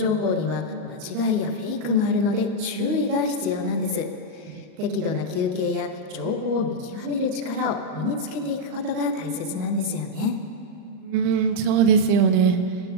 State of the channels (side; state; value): left; late; 38 ms